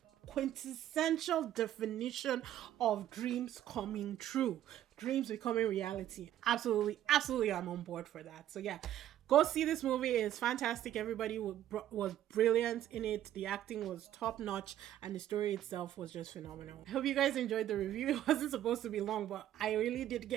quintessential definition of dreams coming true, dreams becoming reality. Absolutely, absolutely, I'm on board for that. So yeah, go see this movie. It's fantastic. Everybody was brilliant in it. The acting was top notch, and the story itself was just phenomenal. I hope you guys enjoyed the review. It wasn't supposed to be long, but I really did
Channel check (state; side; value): quieter; left; 12.1 dB